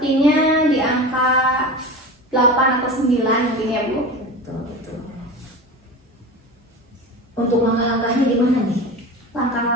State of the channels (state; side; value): normal; both; correlation 0.30